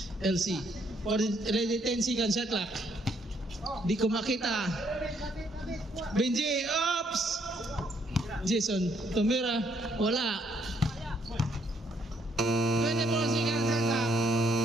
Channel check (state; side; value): normal; both; correlation 0.70